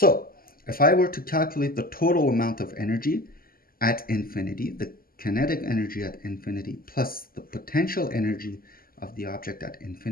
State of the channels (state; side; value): late; right; 0.42 ms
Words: if I were to calculate the total amount of energy at infinity, the kinetic energy at infinity plus the potential energy of the object at